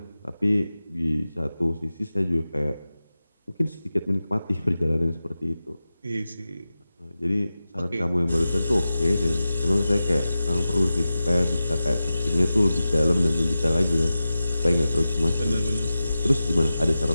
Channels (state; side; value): inverted; both; correlation -0.94